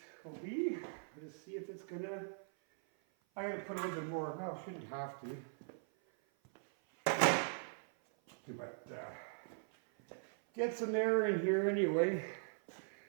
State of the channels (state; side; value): silent; left; 51 dB below the other